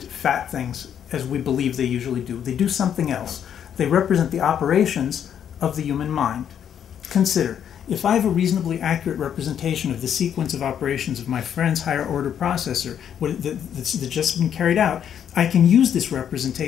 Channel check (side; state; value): right; quieter; 9.0 dB